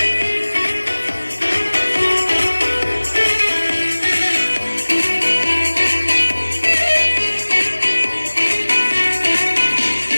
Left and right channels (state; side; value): inverted; both; correlation -1.00